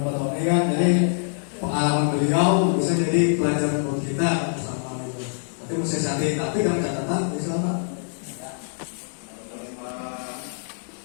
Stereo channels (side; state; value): right; silent; digital silence